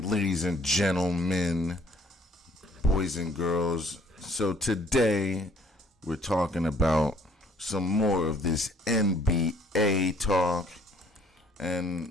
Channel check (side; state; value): both; normal; correlation 0.60